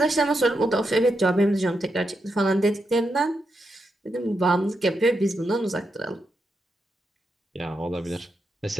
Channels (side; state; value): both; normal; correlation 0.84